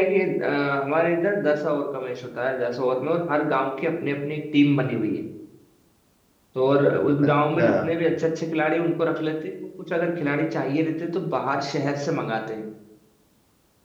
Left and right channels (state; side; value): identical; both; correlation 1.00